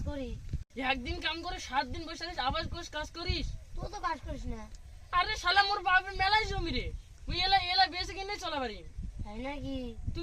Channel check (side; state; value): both; identical; correlation 1.00